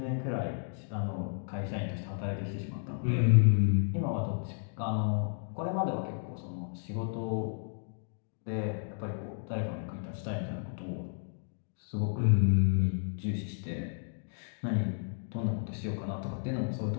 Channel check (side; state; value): right; silent; digital silence